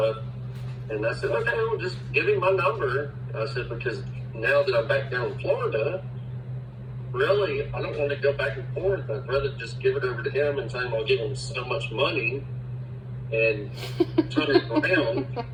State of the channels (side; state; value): both; identical; correlation 1.00